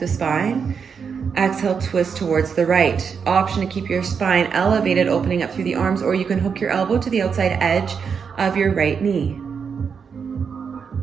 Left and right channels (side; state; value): left; quieter; 6.3 dB